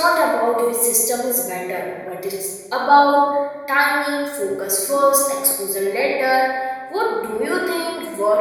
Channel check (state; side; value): identical; both; correlation 1.00